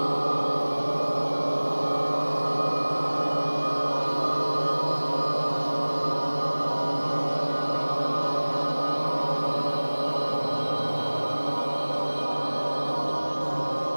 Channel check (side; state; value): both; inverted; correlation -1.00